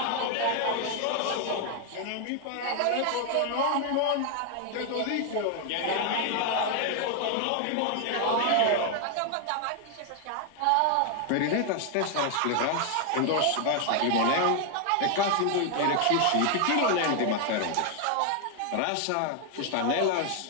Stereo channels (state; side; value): different; both; correlation 0.00